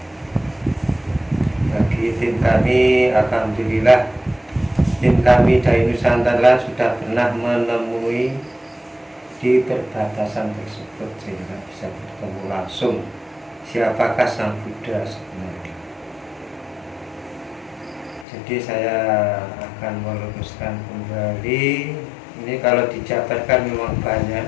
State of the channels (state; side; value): drops out; right; at 18.2 s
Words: Bagi tim kami, alhamdulillah, tim kami dari Nusantara sudah pernah menemui di perbatasan tersebut sehingga bisa bertemu langsung siapakah Sang Buddha sebenarnya. Jadi saya akan meluruskan kembali. Ini kalau dijabarkan memang banyak,